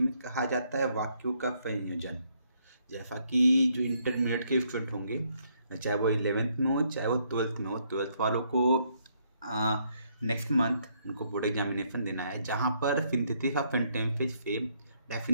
कहा जाता है वाक्यों का संयोजन। जैसा कि जो इंटरमीडिएट के स्टूडेंट होंगे, चाहे वो 11th में हो चाहे वो 12th में हो, 12th वालों को नेक्स्ट मंथ उनको बोर्ड एग्जामिनेशन देना है, जहाँ पर सिंथेसिस ऑफ सेंटेंसेस से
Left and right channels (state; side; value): inverted; both; correlation -0.72